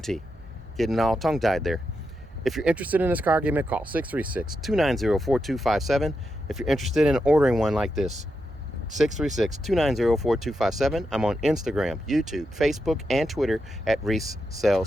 Getting all tongue-tied there. If you're interested in this car, give me a call, 636-290-4257. If you're interested in ordering one like this, 636-290-4257. I'm on Instagram, YouTube, Facebook, and Twitter at Reese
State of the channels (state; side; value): normal; both; correlation 0.86